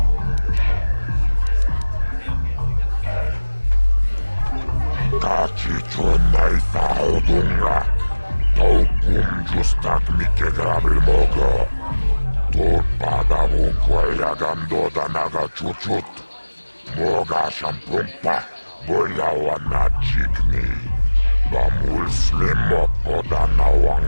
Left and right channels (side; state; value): both; inverted; correlation -1.00